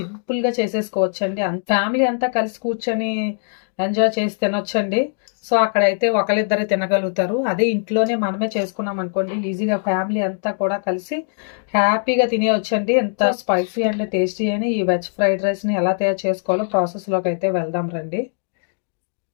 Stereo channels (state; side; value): silent; right; digital silence